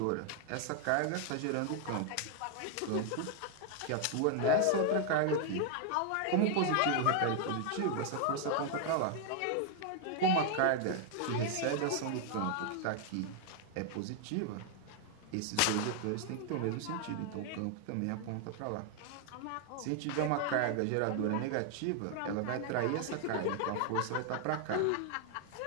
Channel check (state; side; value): different; both; correlation 0.00